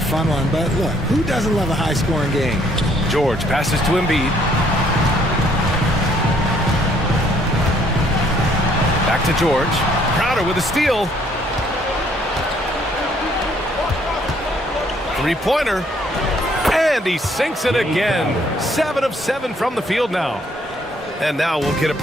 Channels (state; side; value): normal; both; correlation 0.65